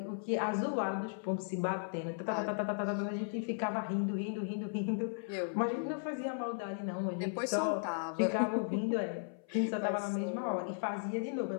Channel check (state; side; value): silent; right; 54 dB below the other